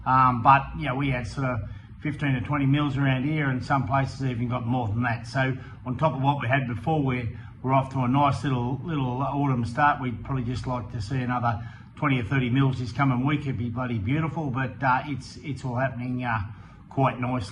But you know, we had sort of 15 to 20 mils around here, and some places even got more than that. So on top of what we had before, we're off to a nice little autumn start. We'd probably just like to see another 20 or 30 mils this coming week. It'd be bloody beautiful, but it's all happening quite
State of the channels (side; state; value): both; identical; correlation 1.00